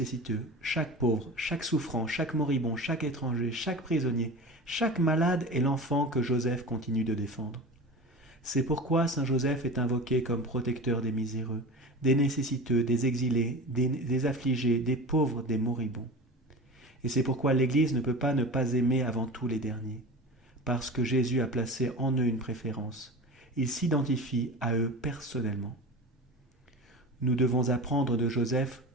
chaque pauvre, chaque souffrant, chaque moribond, chaque étranger, chaque prisonnier, chaque malade est l'enfant que Joseph continue de défendre. C'est pourquoi Saint Joseph est invoqué comme protecteur des miséreux, des nécessiteux, des exilés, des affligés, des pauvres, des moribonds. Et c'est pourquoi l'Église ne peut pas ne pas aimer avant tout les derniers, parce que Jésus a placé en eux une préférence. Il s'identifie à eux personnellement. Nous devons apprendre de Joseph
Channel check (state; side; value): normal; both; correlation 0.32